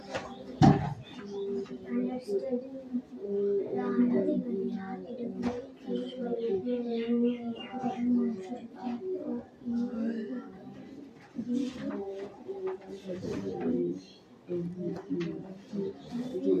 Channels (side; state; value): both; identical; correlation 1.00